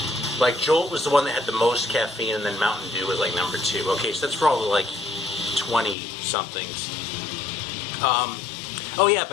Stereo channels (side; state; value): right; drops out; at 6.0 s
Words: Jolt was the one that had the most caffeine, and then Mountain Dew was number 2. Okay, so that's for all the 20-somethings. Oh yeah,